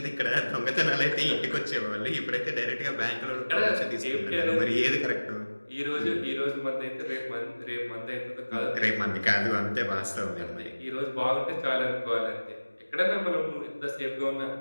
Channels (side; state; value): both; inverted; correlation -1.00